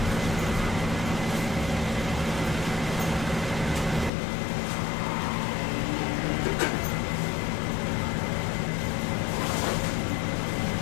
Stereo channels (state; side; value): drops out; right; at 4.1 s